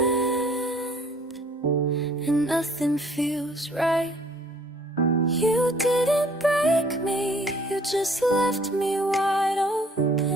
and nothing feels right. You didn't break me, you just left me wide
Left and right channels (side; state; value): both; normal; correlation 0.57